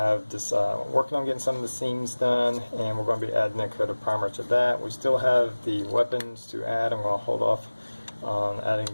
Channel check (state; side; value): inverted; both; correlation -1.00